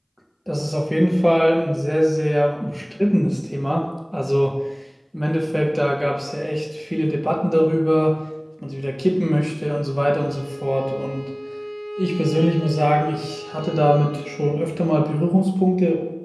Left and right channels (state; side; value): identical; both; correlation 1.00